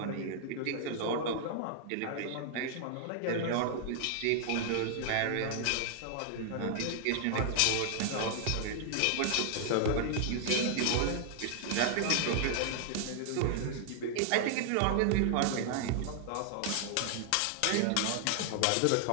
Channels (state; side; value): different; both; correlation 0.00